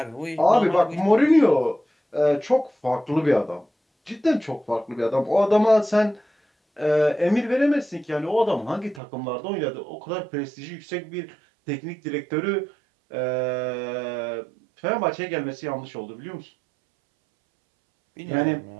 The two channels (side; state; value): left; drops out; at 9.0 s